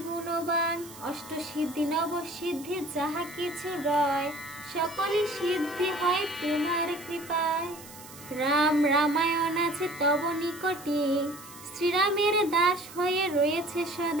গুণবান। অষ্ট সিদ্ধি নব সিদ্ধি যাহা কিছু রয়, সকলই সিদ্ধি হয় তোমার কৃপায়। রাম রামায়ণ আছে তব নিকটে, শ্রীরামের দাস হয়ে রয়েছে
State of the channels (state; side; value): noise; right; hiss, 17 dB below the sound